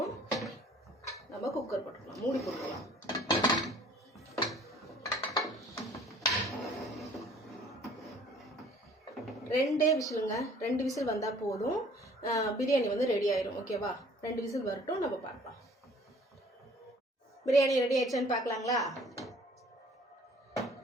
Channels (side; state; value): both; normal; correlation 0.54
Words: நம்ம குக்கர் போட்டுக்கலாம், மூடி போட்டுக்கலாம். ரெண்டே விசிலுங்க, 2 விசில் வந்தால் போதும். பிரியாணி வந்து ரெடி ஆயிடும். ஓகேவா? 2 விசில் வரட்டும், நம்ம பார்க்கலாம். பிரியாணி ரெடி ஆயிடுச்சான்னு பார்க்கலாங்களா?